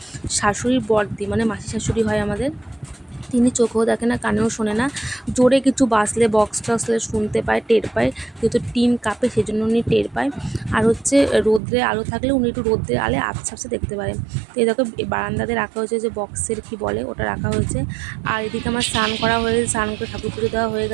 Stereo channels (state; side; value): drops out; left; at 11.6 s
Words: শাশুড়ির বড়দি, মানে মাসি শাশুড়ি হয় আমাদের। তিনি চোখেও দেখে না, কানেও শোনে না। জোরে কিছু বাজলে, বক্স টক্সলে শুনতে পায়, টের পায়। যেহেতু টিন কাঁপে সেই জন্য উনি টের পায়। আর হচ্ছে রোদ্রে আলো থাকলে উনি একটু রোদ্রে আলে আবছা আবছা দেখতে পারে। তো এই দেখো বারান্দাতে রাখা হয়েছে, যে বক্সের কি বলে ওটা রাখা হয়েছে। আর এদিকে আমার স্নান করা হয়ে গেছে, স্নান করে ঠাকুর পুজো দেওয়া হয়ে